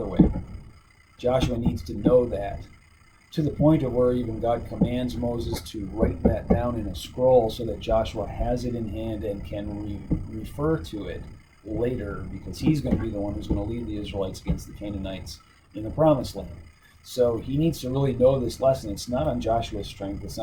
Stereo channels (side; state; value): both; identical; correlation 1.00